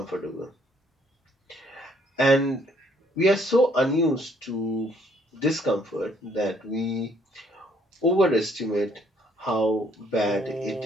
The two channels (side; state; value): both; normal; correlation 0.65